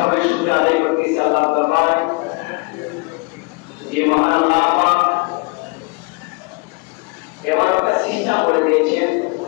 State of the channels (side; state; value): right; quieter; 29.2 dB